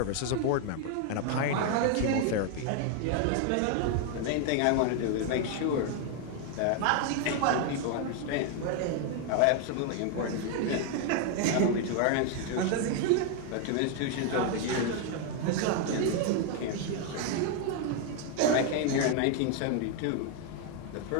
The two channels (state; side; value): different; both; correlation 0.00